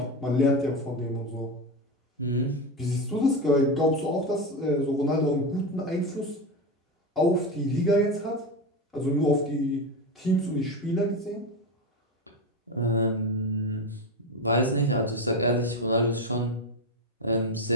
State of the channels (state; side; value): normal; both; correlation 0.17